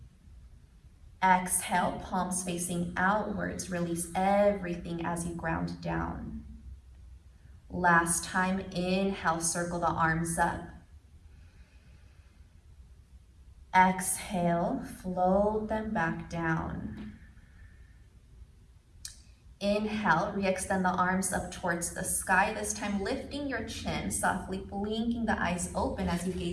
Exhale, palms facing outwards, release everything as you ground down. Last time, inhale, circle the arms up. Exhale, float them back down. Inhale, re-extend the arms up towards the sky, this time lifting your chin, softly blinking the eyes open as you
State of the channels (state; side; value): identical; both; correlation 1.00